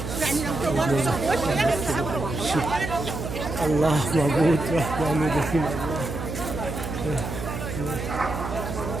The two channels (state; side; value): noise; right; hum, 6 dB below the sound